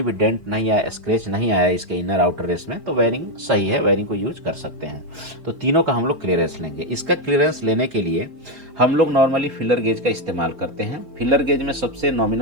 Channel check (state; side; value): late; left; 4.4 ms